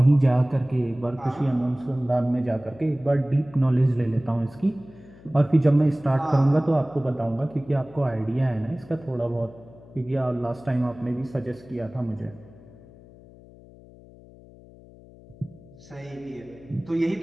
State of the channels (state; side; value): noise; left; hum, 22 dB below the sound